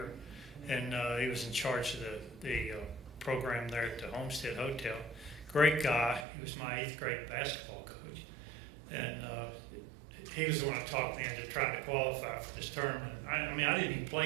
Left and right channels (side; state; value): left; drops out; at 6.2 s